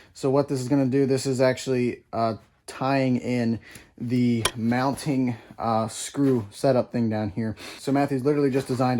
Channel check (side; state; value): both; identical; correlation 1.00